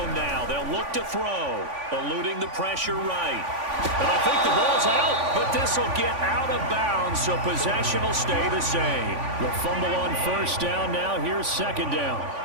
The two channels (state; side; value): late; left; 3.5 ms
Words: now, they'll look to throw, eluding the pressure right. And I think the ball's out, but this will get out of bounds, so possession will stay the same. The fumble on 1st down now. Here's 2nd down.